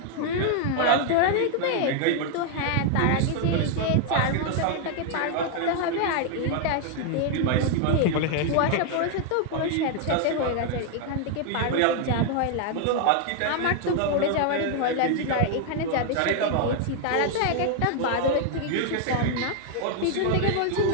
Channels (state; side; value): different; both; correlation 0.00